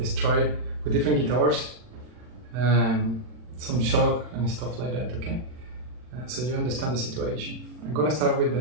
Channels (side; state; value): left; late; 40 ms